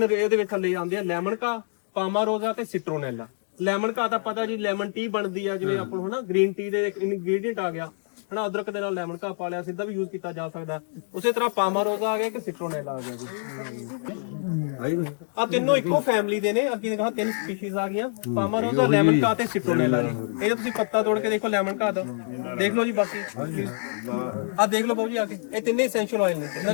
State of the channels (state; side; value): silent; right; digital silence